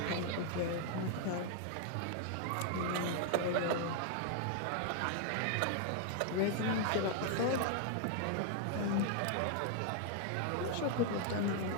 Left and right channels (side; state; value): both; different; correlation 0.00